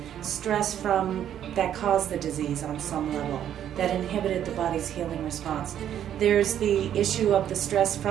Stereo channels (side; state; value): left; quieter; 10.3 dB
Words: stress that caused the disease on some level, that inhibited the body's healing response. There's the issue of the stress